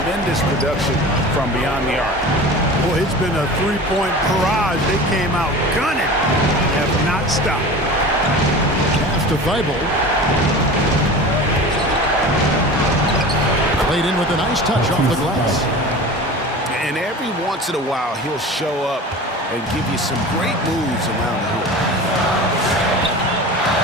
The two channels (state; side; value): normal; both; correlation 0.35